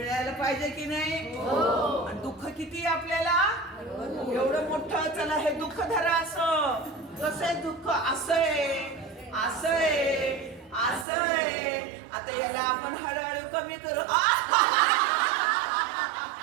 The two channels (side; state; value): left; drops out; at 11.1 s